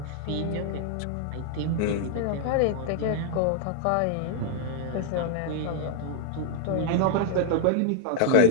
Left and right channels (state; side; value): different; both; correlation -0.01